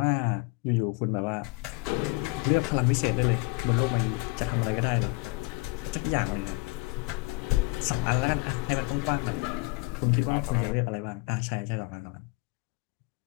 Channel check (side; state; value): right; quieter; 25.7 dB